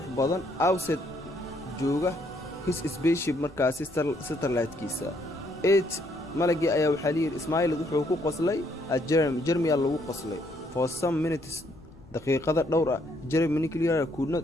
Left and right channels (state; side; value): noise; left; rumble, 23 dB below the sound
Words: badan outside jooga his spaceship markaasi satellite-kiisa malagii ayaa waxaa la yidhi Ismail wuxuu ku qoslay Jeremy lagu qoslay for some minutes daqiiqada dhowr ah Jeremy Clear could